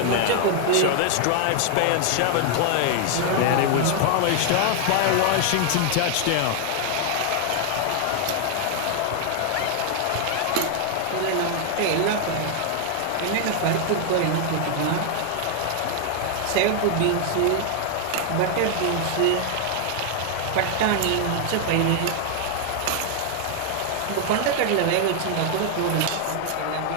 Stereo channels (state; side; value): different; both; correlation 0.00